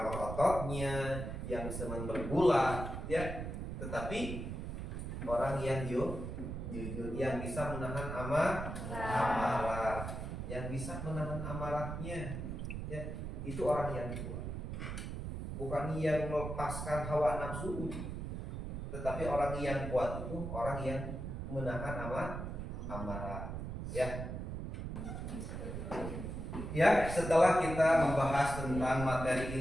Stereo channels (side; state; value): right; noise; rumble, 5 dB below the sound